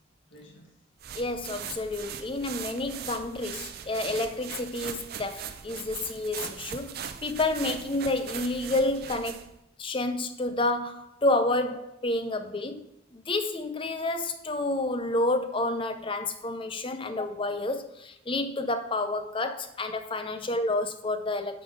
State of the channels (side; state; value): both; normal; correlation 0.25